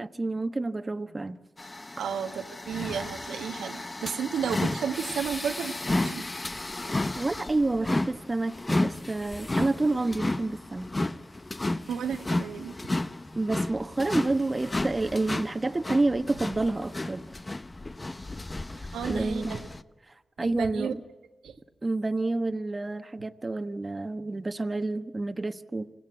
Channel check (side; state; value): both; normal; correlation 0.95